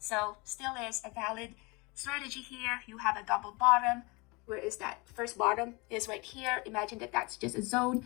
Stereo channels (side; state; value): right; quieter; 27.0 dB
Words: still is a valid strategy here. You have a double bottom. Where is that first bottom is right here. Imagine that that's just a zone.